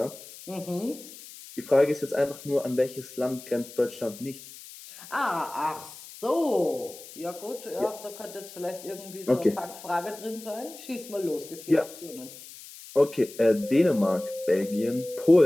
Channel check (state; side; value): noise; left; hiss, 16 dB below the sound